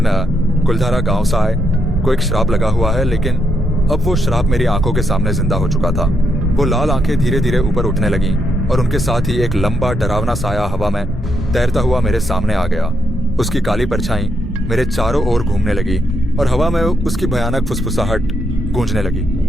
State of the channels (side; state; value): both; normal; correlation 0.79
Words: कुलधारा गांव साए को एक श्राप लगा हुआ है, लेकिन अब वो श्राप मेरी आंखों के सामने जिंदा हो चुका था। वो लाल आंखें धीरे धीरे ऊपर उठने लगीं और उनके साथ ही एक लंबा डरावना साया हवा में तैरता हुआ मेरे सामने आ गया। उसकी काली परछाई मेरे चारों ओर घूमने लगी और हवा में उसकी भयानक फुसफुसाहट गूंजने लगी।